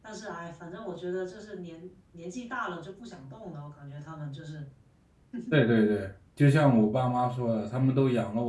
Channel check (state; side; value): identical; both; correlation 1.00